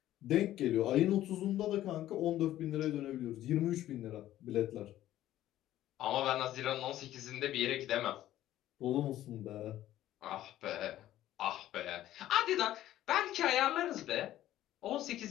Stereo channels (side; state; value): right; quieter; 13.5 dB